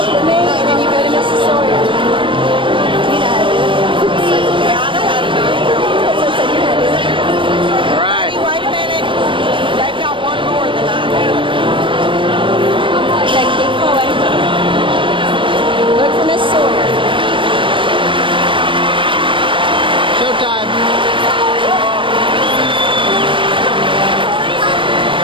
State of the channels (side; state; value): left; late; 0.25 ms